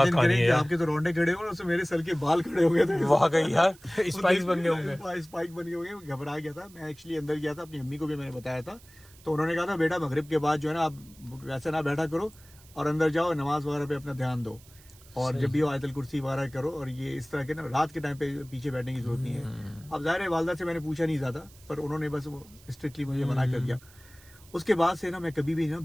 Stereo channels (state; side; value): noise; right; hiss, 24 dB below the sound